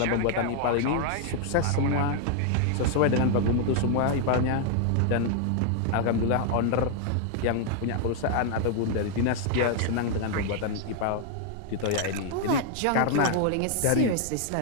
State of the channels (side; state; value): both; different; correlation 0.00